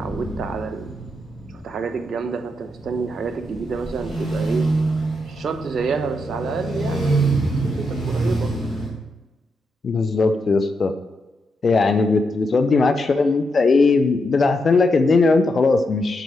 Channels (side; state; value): both; normal; correlation 0.83